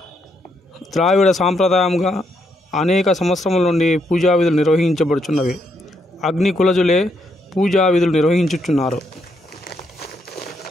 ద్రావిడ సాంప్రదాయంగా అనేక సంవత్సరముల నుండి పూజా విధులు నిర్వహించబడుచున్నవి. అగ్ని కులజులే పూజా విధులు నిర్వహించుచున్నారు.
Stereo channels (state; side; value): normal; both; correlation 0.77